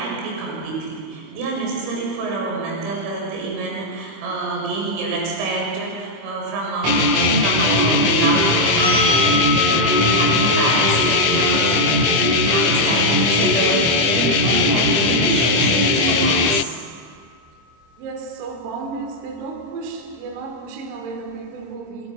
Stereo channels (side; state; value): left; late; 25 ms